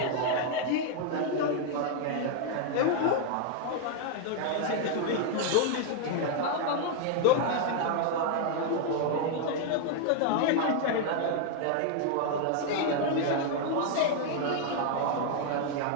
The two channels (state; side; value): different; both; correlation 0.00